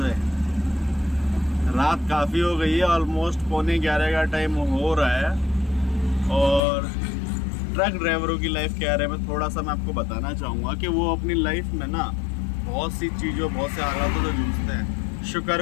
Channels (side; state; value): right; drops out; at 6.6 s